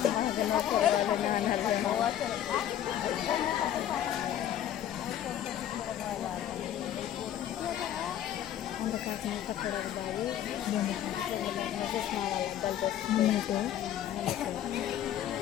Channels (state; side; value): quieter; right; 11.0 dB